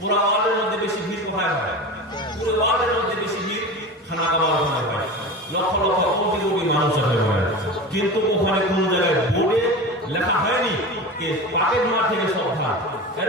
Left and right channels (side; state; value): both; normal; correlation 0.29